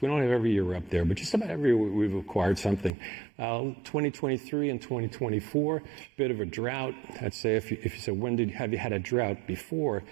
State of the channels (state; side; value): drops out; left; at 2.9 s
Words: We don't have every year up there, but just about every year we've acquired something. 2023 and 2024, bit of a drought. I'd say if you said, have you had a drought before?